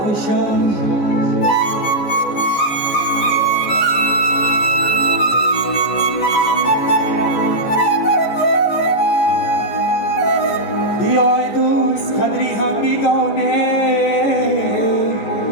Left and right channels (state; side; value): late; right; 14 ms